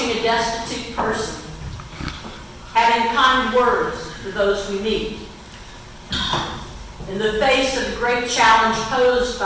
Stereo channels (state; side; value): identical; both; correlation 1.00